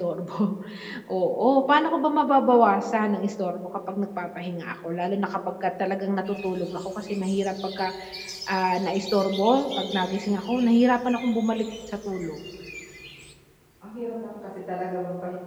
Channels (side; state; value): both; identical; correlation 1.00